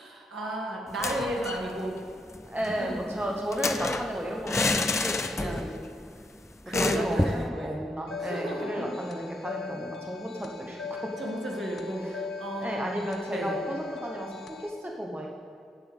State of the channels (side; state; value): both; normal; correlation 0.77